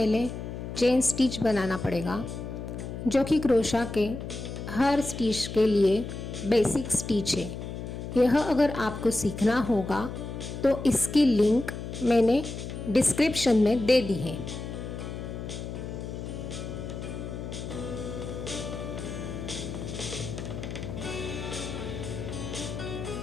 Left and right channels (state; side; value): noise; left; hum, 7 dB below the sound